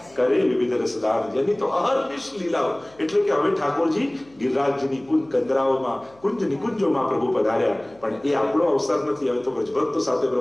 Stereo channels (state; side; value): noise; left; hum, 29 dB below the sound